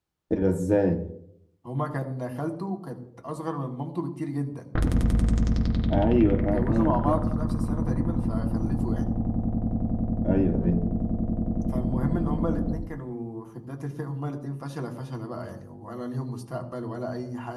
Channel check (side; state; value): both; identical; correlation 1.00